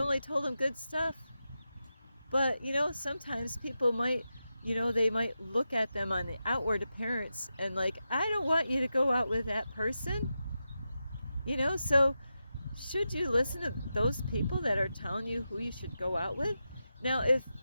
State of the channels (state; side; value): inverted; both; correlation -0.90